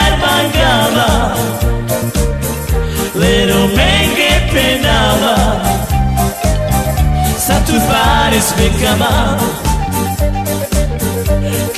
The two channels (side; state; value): both; identical; correlation 1.00